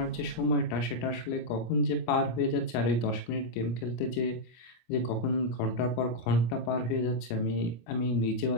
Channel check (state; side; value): late; right; 25 ms